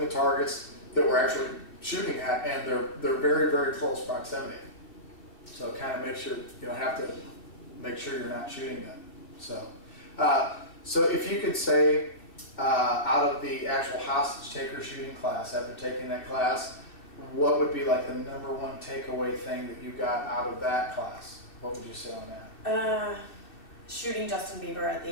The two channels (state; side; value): late; right; 2.6 ms